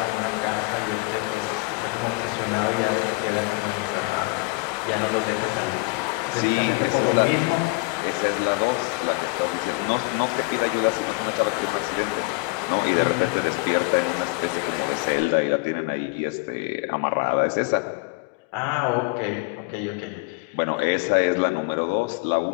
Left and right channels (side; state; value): right; quieter; 26.0 dB